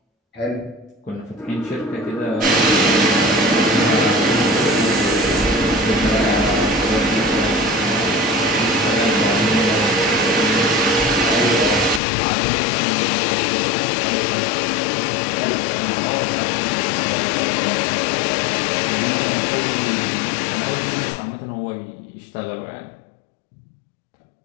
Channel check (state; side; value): drops out; right; at 12.0 s